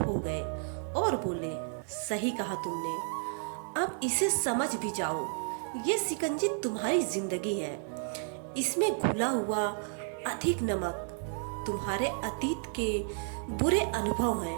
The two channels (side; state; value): left; silent; 56 dB below the other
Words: गए और बोले, सही कहा तुमने, अब इसे समझ भी जाओ। ये शिकंजी तुम्हारी जिंदगी है। इसमें घुला हुआ अधिक नमक तुम्हारे अतीत के बुरे अनुभव